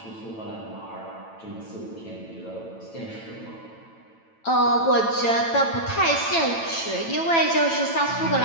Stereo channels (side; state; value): right; late; 9.0 ms